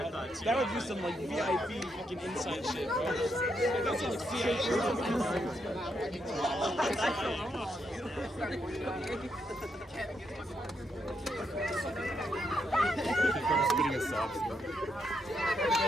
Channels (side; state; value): both; normal; correlation 0.79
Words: that would be some like VIP fucking inside shit, bro. That's like spitting a sob story.